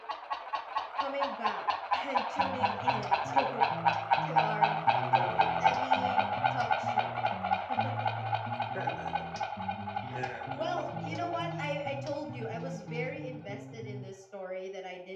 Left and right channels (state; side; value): identical; both; correlation 1.00